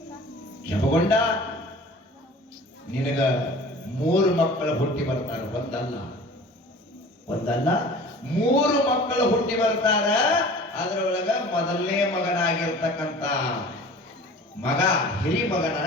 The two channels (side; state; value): both; normal; correlation 0.43